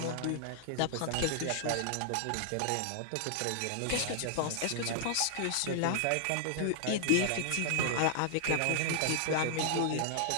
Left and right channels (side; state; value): both; different; correlation -0.01